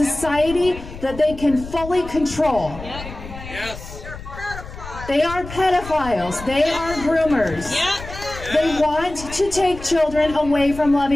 that they can fully control. They are pedophiles. They are groomers. They want to take children away from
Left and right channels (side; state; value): left; noise; rumble, 13 dB below the sound